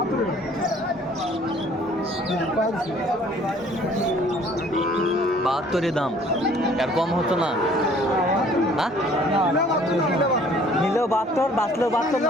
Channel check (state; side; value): normal; both; correlation 0.56